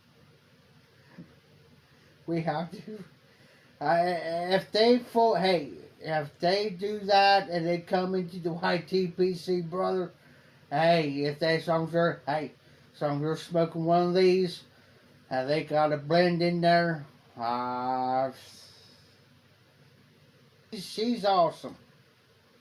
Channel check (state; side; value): identical; both; correlation 1.00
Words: We have to. If they do that and they come into the YTPC, brother, hey, if they songs are, you're smoking one of these, and they got a blend in there, she's awesome.